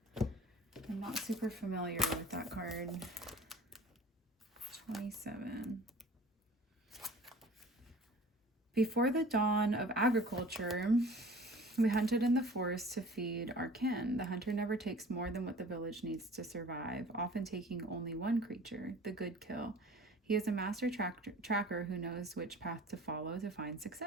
I'm not super familiar with that card. 27. Before the dawn of agriculture, we hunted in the forest to feed our kin. The hunter never takes more than what the village needs to survive, often taking only one creature, the good kill. He is a master tracker who knows which path to follow to find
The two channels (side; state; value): both; normal; correlation 0.45